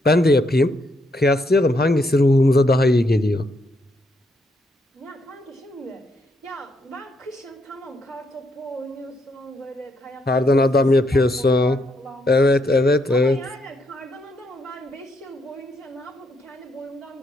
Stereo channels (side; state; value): both; normal; correlation 0.76